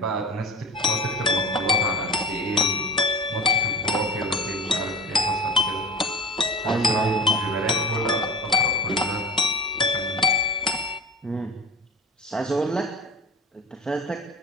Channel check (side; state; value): both; normal; correlation 0.35